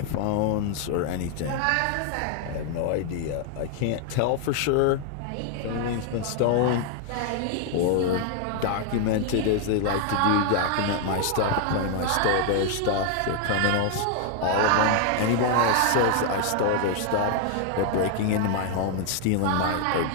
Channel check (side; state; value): both; different; correlation 0.00